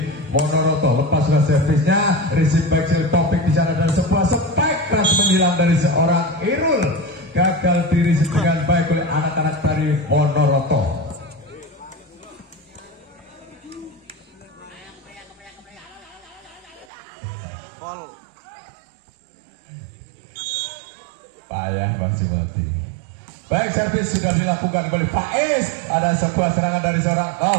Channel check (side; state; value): left; drops out; at 16.9 s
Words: Monoroto. Lepas sudah servisnya, receive back topik di sana dan sebuah spek keras menyilang dari seorang Irul, gagal dirisip dengan baik oleh anak-anak dari Monoroto. Pol payah Bang Jumati. Baik, servis sudah dilakukan oleh Faiz. Ada sebuah serangan dari seorang